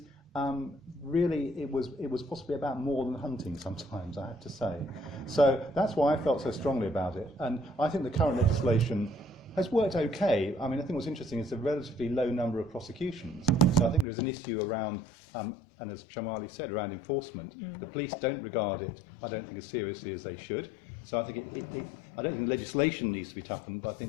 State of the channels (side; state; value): right; drops out; at 14.1 s